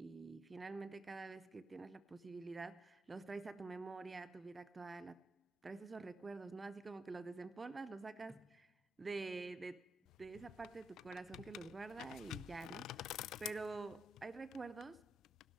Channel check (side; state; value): both; normal; correlation 0.83